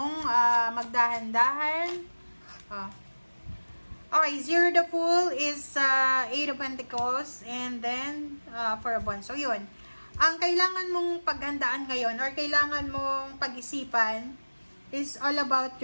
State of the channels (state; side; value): inverted; both; correlation -1.00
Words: magdahan-dahan? Okay, Zero the Fool is Eight of Pentacles and then for a bond. So, yun. Ang kailangan mong paghandaan ngayon or kailangan mong pag-isipan is all about